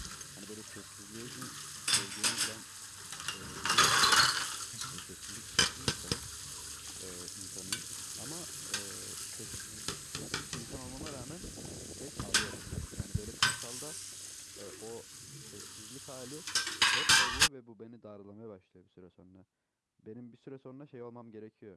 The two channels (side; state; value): both; identical; correlation 1.00